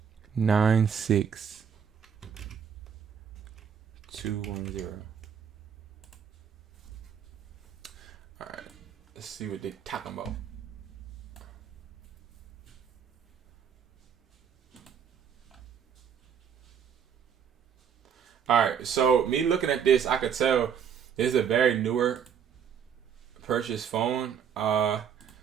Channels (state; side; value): quieter; left; 7.7 dB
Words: 9, 6, 2, 1, 0. All right, let's see what they're talking about. All right, so me looking at this, I could tell this is a very newer purchased phone.